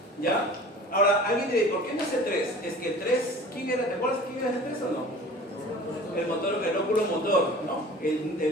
¿ya? Ahora, alguien dirá, ¿por qué no es el 3? Es que el 3, ¿quién era? ¿Te acuerdas quién era el 3 o no? El motor, el óculo motor, ¿no?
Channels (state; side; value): normal; both; correlation 0.43